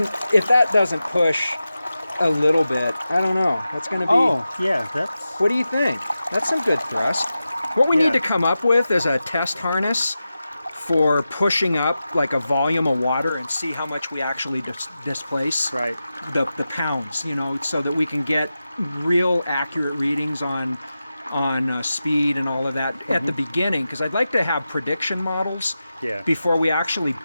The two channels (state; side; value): inverted; both; correlation -0.92